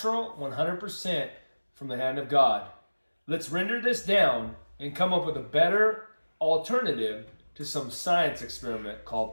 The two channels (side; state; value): both; inverted; correlation -1.00